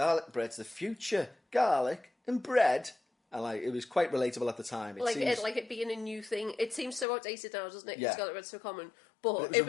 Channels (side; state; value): right; drops out; at 7.1 s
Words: the future, garlic and bread. And like, it was quite relatable at the time. It being a new thing. It seems so outdated now, doesn't it? Yeah. Because garlic bread's so common. But it